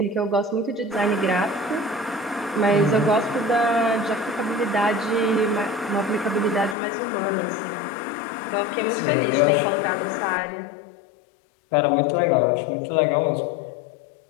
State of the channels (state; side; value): drops out; right; at 6.8 s